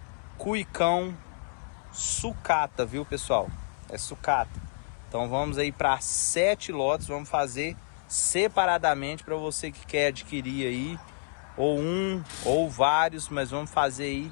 cuicão, sucata, viu pessoal? É sucata. Então vamos aí para 7 lotes, vamos fazer separadamente para você que quer adquirir aí, ou um ou vários, mas vamos fazer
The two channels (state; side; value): silent; right; 58 dB below the other